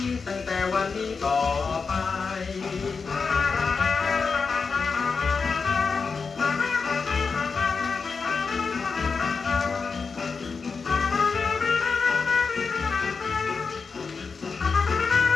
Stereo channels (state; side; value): quieter; right; 5.0 dB